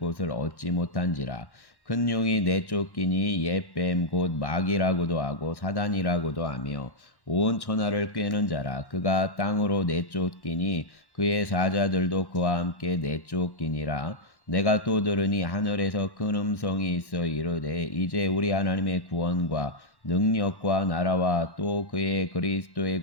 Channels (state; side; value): late; right; 1.1 ms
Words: 얻지 못한지라. 큰 용이 내쫓기니 옛뱀 곧 마귀라고도 하고 사단이라고도 하며 온 천하를 꿰는 자라. 그가 땅으로 내쫓기니 그의 사자들도 그와 함께 내쫓기니라. 내가 또 들으니 하늘에서 큰 음성이 있어 이르되 이제 우리 하나님의 구원과 능력과 나라와 또 그의 그리스도의